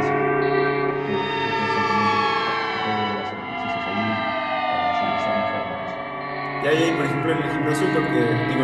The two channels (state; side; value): identical; both; correlation 1.00